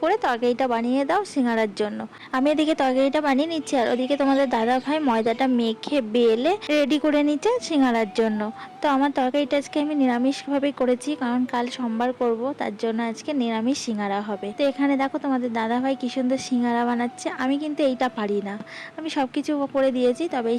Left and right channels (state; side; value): identical; both; correlation 1.00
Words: করে তরকারিটা বানিয়ে দাও সিঙ্গারার জন্য। আমি এদিকে তরকারিটা বানিয়ে নিচ্ছি আর ওদিকে তোমাদের দাদা ভাই ময়দাটা মেখে বেলে রেডি করে নিচ্ছে সিঙ্গারার জন্য। তো আমার তরকারিটা আজকে আমি নিরামিষভাবেই করেছি, কারণ কাল সোমবার করব, তার জন্য আজকে নিরামিষ সিঙ্গারা হবে। তো এখানে দেখো তোমাদের দাদা ভাই কি সুন্দর সিঙ্গারা বানাচ্ছে। আমি কিন্তু এইটা পারি না, আমি সব কিছু করে দিয়েছি, তবে